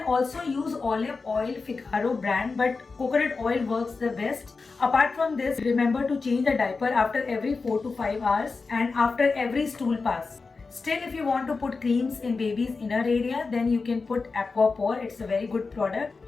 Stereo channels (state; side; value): quieter; right; 4.3 dB